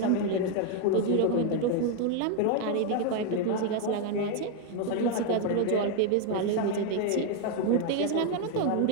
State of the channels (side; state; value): both; different; correlation 0.01